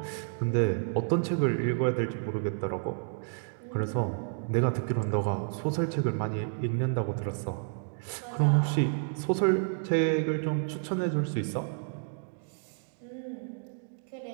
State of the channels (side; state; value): left; silent; digital silence